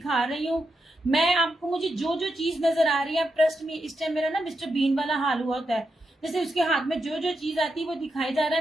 रही हूँ। मैं आपको, मुझे जो जो चीज नजर आ रही है, ट्रस्ट में इस टाइम मेरा ना मिस्टर बीन वाला हाल हुआ होता है, जैसे उसके हाथ में जो जो चीज आती है वो दिखाई जा रहा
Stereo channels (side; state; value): both; normal; correlation 0.85